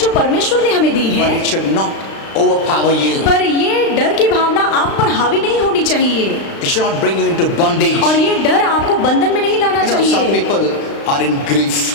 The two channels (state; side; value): late; right; 36 ms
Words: परमेश्वर ने हमें दी but है, it should not overpower you. पर ये डर की भावना आप पर हावी नहीं होनी चाहिए, It should not bring you into bondage. और ये डर आपको बंधन में नहीं लाना You know, some चाहिए। people are in